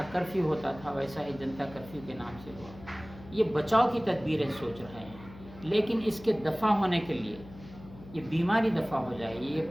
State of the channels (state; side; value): noise; left; hum, 17 dB below the sound